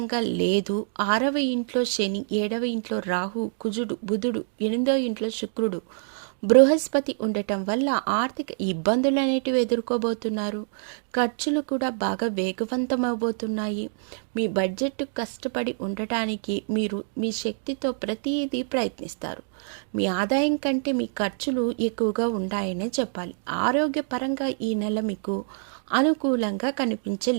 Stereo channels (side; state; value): left; silent; digital silence